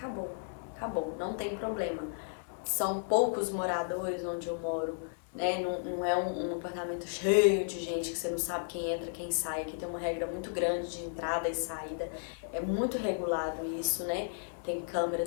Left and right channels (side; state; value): right; silent; digital silence